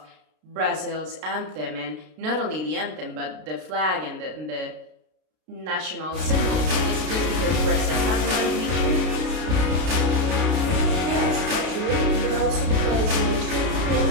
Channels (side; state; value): left; late; 32 ms